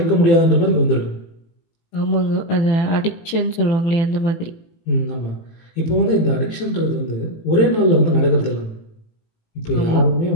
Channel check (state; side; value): late; right; 18 ms